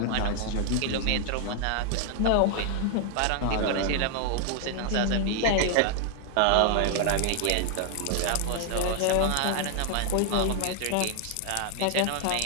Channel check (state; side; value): different; both; correlation 0.00